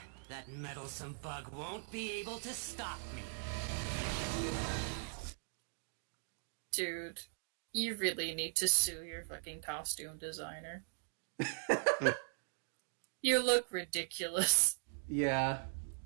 that meddlesome bug won't be able to stop me. Dude, you really need to sue your fucking costume designer. You look ridiculous. Yeah.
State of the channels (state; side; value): silent; left; digital silence